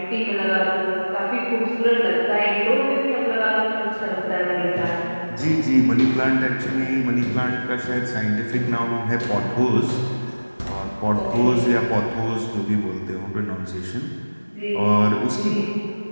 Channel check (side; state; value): both; inverted; correlation -1.00